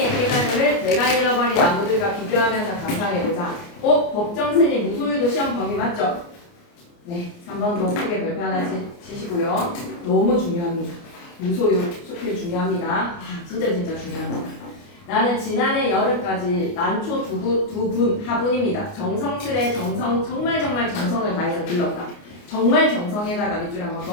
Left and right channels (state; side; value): late; right; 29 ms